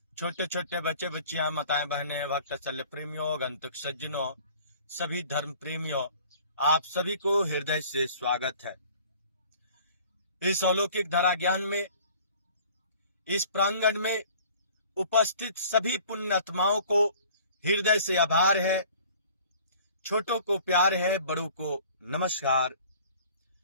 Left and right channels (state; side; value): inverted; both; correlation -0.50